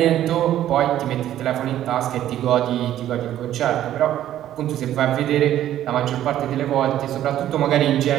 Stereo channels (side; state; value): left; quieter; 12.1 dB